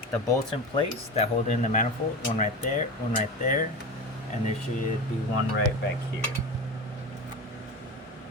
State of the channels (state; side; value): normal; both; correlation 0.27